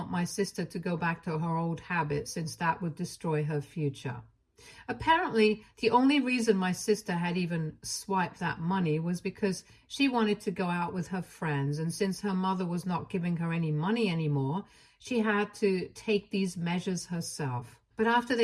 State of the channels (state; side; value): identical; both; correlation 1.00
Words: my sister to go back to her old habits, since that would destroy her future. Apparently, the only reason my sister had even swiped that money was because she wanted to go out with her friends, and since her mother was not giving her any money anymore, she had to take these measures herself. But after